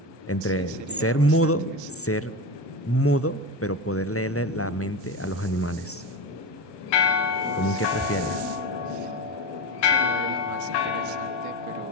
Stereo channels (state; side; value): normal; both; correlation 0.21